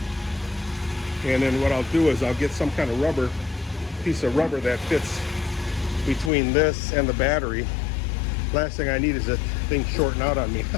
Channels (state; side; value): drops out; right; at 6.3 s